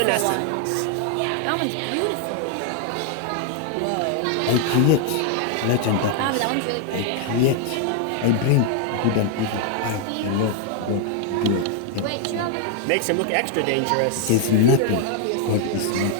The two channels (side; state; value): both; different; correlation 0.00